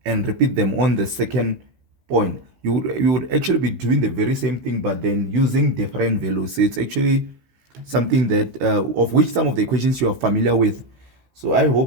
and repeat them on the second point, you would actually be doing the very same thing, but then using different values. So it's actually something that of which some of the equations you are familiar with. So I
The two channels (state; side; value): late; left; 16 ms